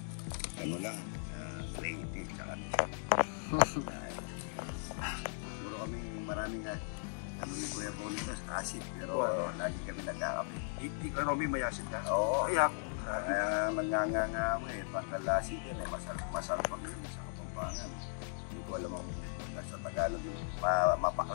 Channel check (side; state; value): right; silent; digital silence